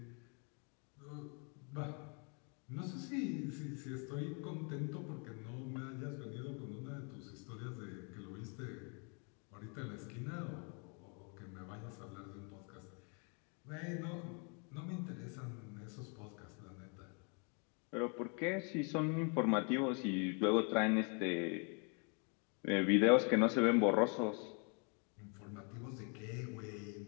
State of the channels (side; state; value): right; quieter; 36.8 dB